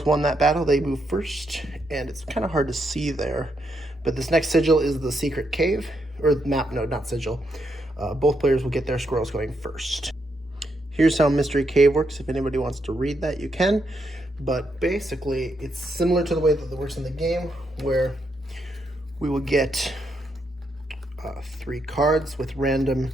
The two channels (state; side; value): normal; both; correlation 0.79